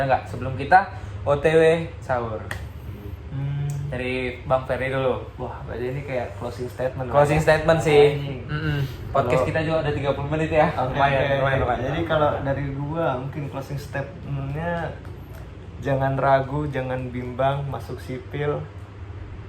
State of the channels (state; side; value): identical; both; correlation 1.00